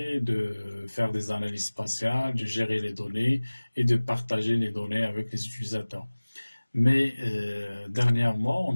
de faire des analyses spatiales, de gérer les données et de partager les données avec les utilisateurs. Mais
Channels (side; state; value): both; inverted; correlation -1.00